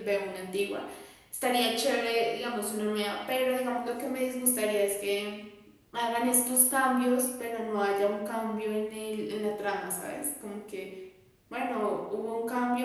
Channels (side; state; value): both; identical; correlation 1.00